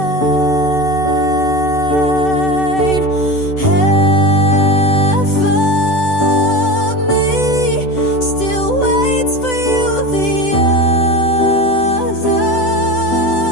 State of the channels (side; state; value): right; late; 7.9 ms